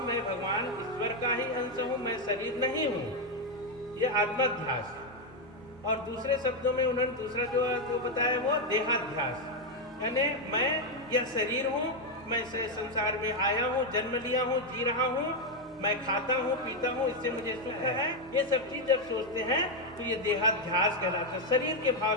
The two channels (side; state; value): both; normal; correlation 0.04